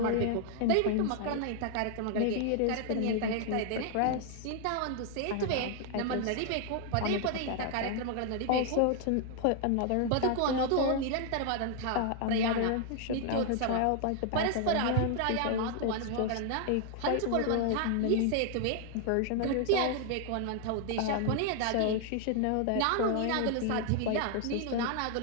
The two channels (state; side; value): different; both; correlation 0.00